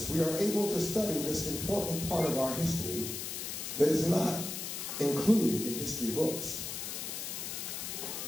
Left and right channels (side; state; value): left; noise; hiss, 5 dB below the sound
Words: we are able to study this important part of our history that is not included in history books.